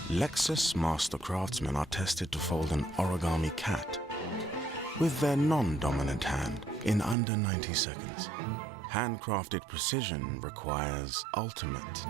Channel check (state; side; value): drops out; left; at 7.2 s